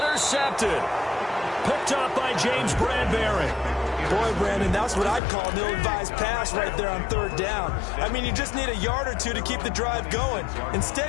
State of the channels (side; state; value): right; drops out; at 5.2 s